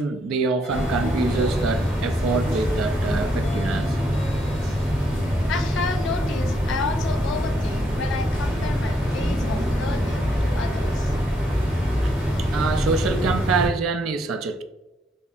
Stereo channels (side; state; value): both; normal; correlation 0.73